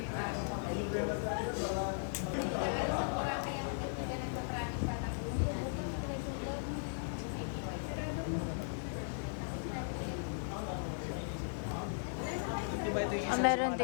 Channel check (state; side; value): silent; right; digital silence